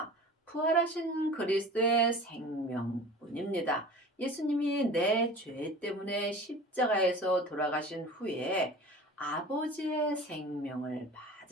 부활하신 그리스도의 생명뿐입니다. 예수님이 내 죄 때문에 십자가에서 돌아가신 후에 아버지의 생명을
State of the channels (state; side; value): normal; both; correlation 0.39